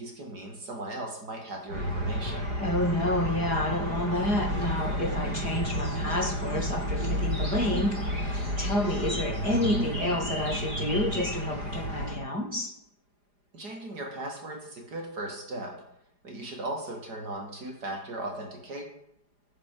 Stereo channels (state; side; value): late; left; 4.9 ms